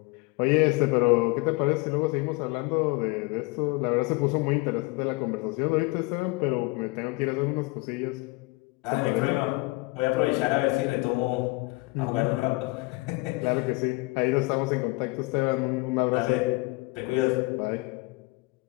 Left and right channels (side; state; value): right; quieter; 25.2 dB